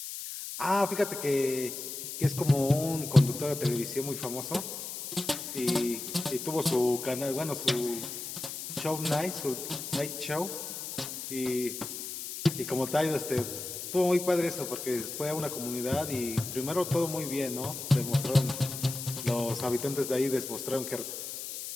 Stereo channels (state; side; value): noise; left; hiss, 7 dB below the sound